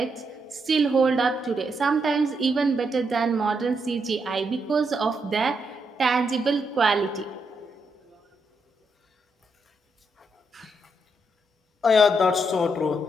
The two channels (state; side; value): normal; both; correlation 0.80